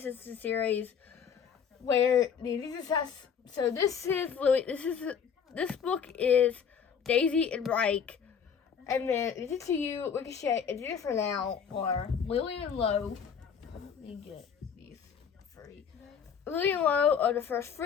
series, where the Addicted Obsessed. So this book is Daisy and Reich, and then Addicted to You, Ricochet, Addicted for Now, or Lily and Low. Let me get these free. Lily and Low are the first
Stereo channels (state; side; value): quieter; right; 7.1 dB